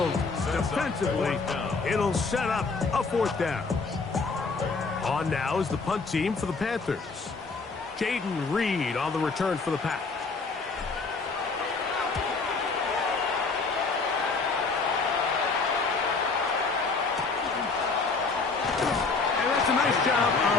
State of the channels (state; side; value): quieter; right; 4.3 dB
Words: defensively. It'll set up a fourth down. On now is the punt team for the Panthers. Jaden Reed on the return for the Pack. A nice job